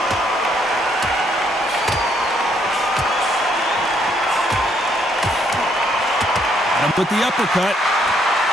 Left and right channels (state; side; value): normal; both; correlation 0.70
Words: With the uppercut.